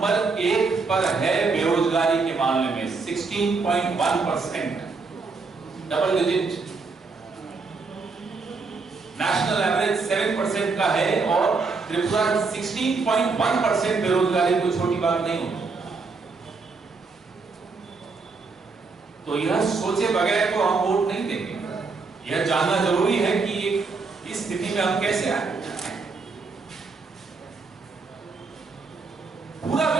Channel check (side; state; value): left; quieter; 4.3 dB